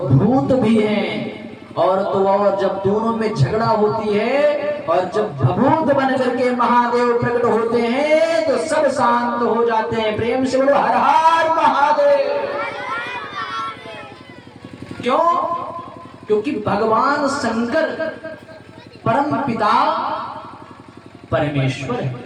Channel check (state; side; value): identical; both; correlation 1.00